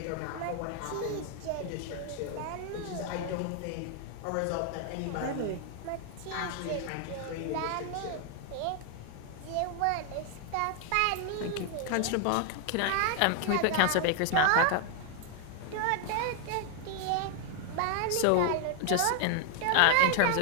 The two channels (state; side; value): different; both; correlation 0.00